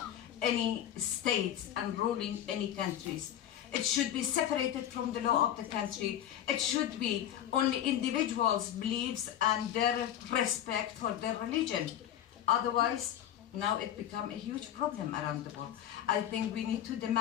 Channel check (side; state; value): right; quieter; 11.0 dB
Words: any states and ruling any countries. It should be separated from the law of the country. It should be only individuals' beliefs and their respect for their religion. Otherwise, now it becomes a huge problem around the world. I think we need to